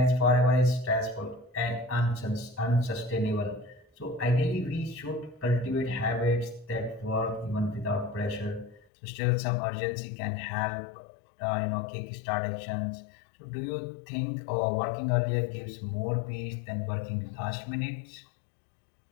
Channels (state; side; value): drops out; right; at 8.8 s